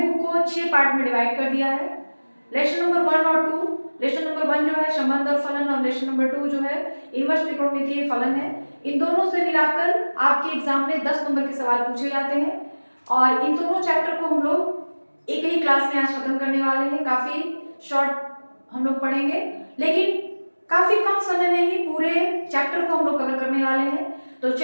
को 6 पार्ट में डिवाइड कर दिया है। लेक्चर नंबर 1 और 2, लेक्चर नंबर 1 जो है संबंध और फलन, और लेक्चर नंबर 2 जो है इनवर्स त्रिकोणमितीय फलन है। इन दोनों से मिलाकर आपके एग्जाम में 10 नंबर के सवाल पूछे जाते हैं। और इन दोनों चैप्टर को हम लोग एक ही क्लास में आज खत्म करने वाले हैं। काफी शॉर्ट हम लोग पढ़ेंगे, लेकिन काफी कम समय में ही पूरे चैप्टर को हम लोग कवर करने वाले हैं। तो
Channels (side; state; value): both; inverted; correlation -1.00